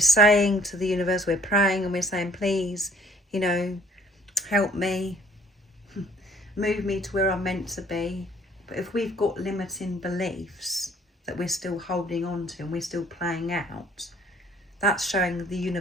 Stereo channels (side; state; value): both; normal; correlation 0.57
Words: saying to the universe, we're praying and we're saying, please, you know, help me, move me to where I'm meant to be. But if we've got limiting beliefs that we're still holding on to and we're still playing out, that's showing the